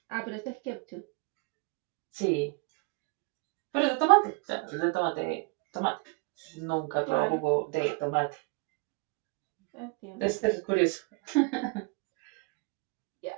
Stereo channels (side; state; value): left; quieter; 28.8 dB